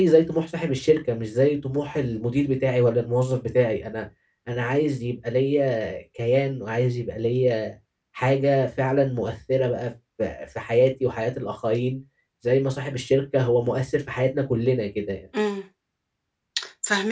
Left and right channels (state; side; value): identical; both; correlation 1.00